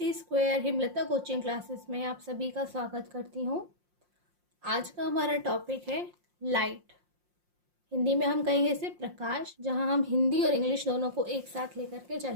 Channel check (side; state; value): left; late; 5.6 ms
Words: Himlata coaching classes में आप सभी का स्वागत करती हूँ। आज का हमारा टॉपिक है लाइट। हिंदी में हम कहेंगे इसे प्रकाश, जहाँ हम हिंदी और इंग्लिश दोनों को एक साथ लेकर के